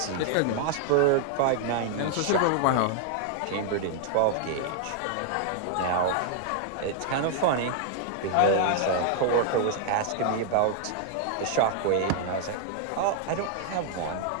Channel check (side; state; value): both; different; correlation 0.00